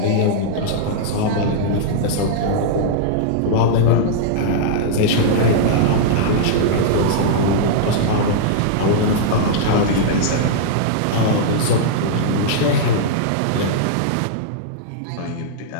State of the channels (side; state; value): both; different; correlation -0.02